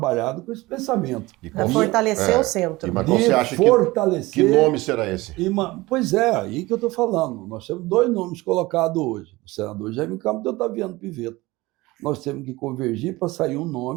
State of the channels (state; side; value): quieter; left; 20.5 dB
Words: com esse pensamento. Para fortalecer o centro. Mas você acha que nome será esse? Pois é, aí que eu estou falando. Nós temos 2 nomes colocados hoje. O senador Jaime Campos e o Otaviano Pivetta. Nós temos que convergir para sair um